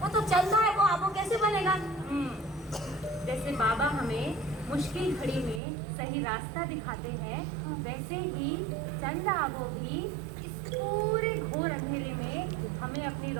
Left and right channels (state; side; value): drops out; left; at 5.6 s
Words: वो तो चंदा है, वो आबो कैसे बनेगा? जैसे बाबा हमें मुश्किल घड़ी में सही रास्ता दिखाते हैं वैसे ही चंदा आबो भी इस पूरे घोर अंधेरे में हमें अपनी